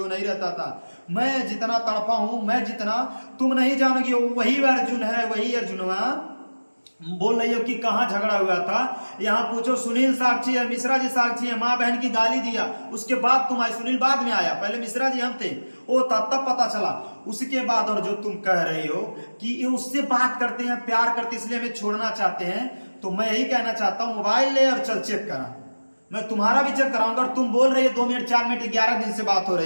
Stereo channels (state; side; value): inverted; both; correlation -1.00